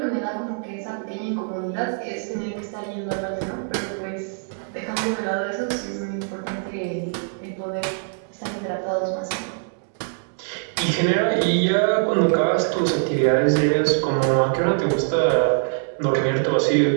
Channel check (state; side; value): silent; left; digital silence